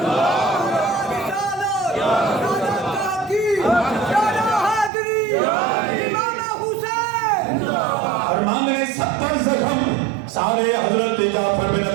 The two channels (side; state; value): left; drops out; at 4.9 s